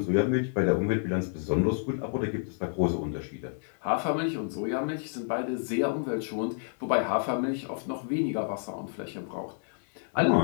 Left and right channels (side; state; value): right; silent; 58 dB below the other